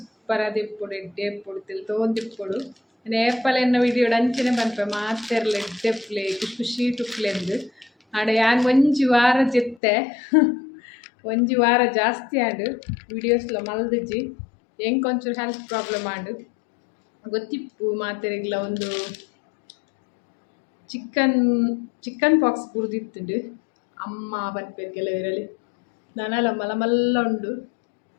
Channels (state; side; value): drops out; right; at 9.8 s